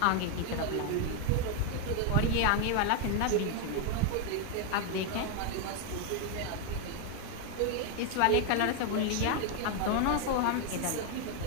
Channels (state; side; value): different; both; correlation 0.01